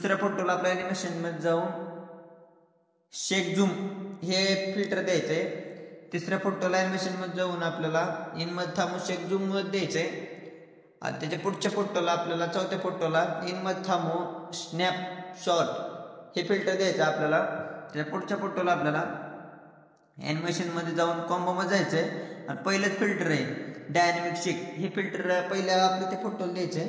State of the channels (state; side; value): identical; both; correlation 1.00